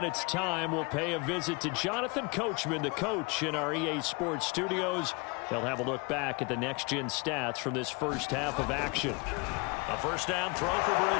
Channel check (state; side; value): quieter; right; 29.5 dB